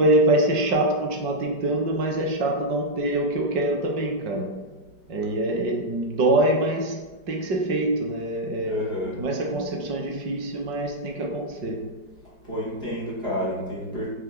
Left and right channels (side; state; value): left; late; 5.0 ms